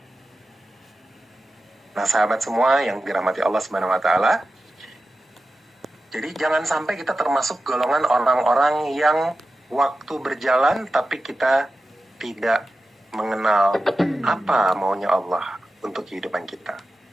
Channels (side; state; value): both; normal; correlation 0.93